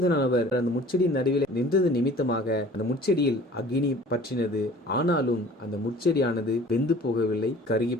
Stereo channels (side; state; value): both; normal; correlation 0.47